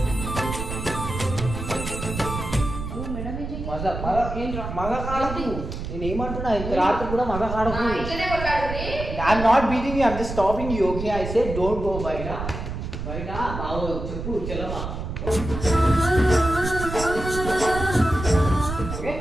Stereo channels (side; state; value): right; noise; rumble, 6 dB below the sound